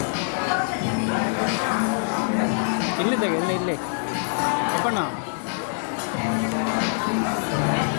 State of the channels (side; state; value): right; silent; digital silence